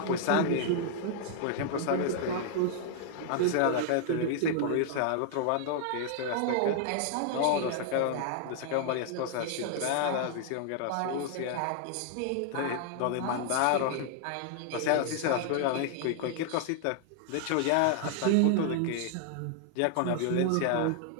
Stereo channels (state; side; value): different; both; correlation 0.00